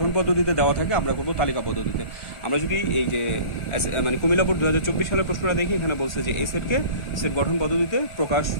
পদ্ধতিতে দেওয়া থাকে আমরা করব তালিকা পদ্ধতিতে। আমরা যদি এই যে মানে কুমিল্লা বোর্ড 2024 সালের প্রশ্নটা দেখি, এখানে বলছে যে এই সেটকে সেট গঠন পদ্ধতিতে প্রকাশ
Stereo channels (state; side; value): late; right; 1.4 ms